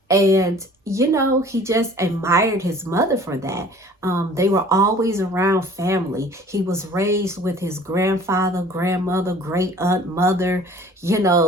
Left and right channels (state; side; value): normal; both; correlation 0.49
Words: And, you know, he just admired his mother for that. They were always around family. He was raised with his grandfather, grandmother, great aunt, mother. You